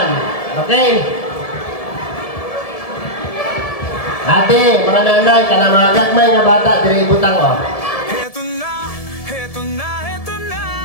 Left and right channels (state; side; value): late; right; 1.7 ms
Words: Okay? Ate, mga nanay, kanang mga gagmay nga bata, dili butang, oh. Heto na, heto na, heto na.